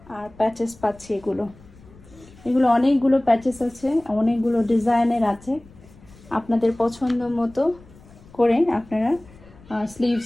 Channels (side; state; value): left; noise; rumble, 23 dB below the sound